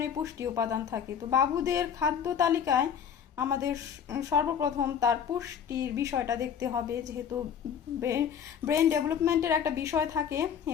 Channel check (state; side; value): quieter; right; 7.9 dB